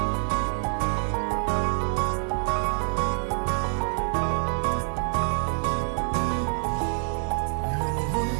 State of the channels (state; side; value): silent; left; 61 dB below the other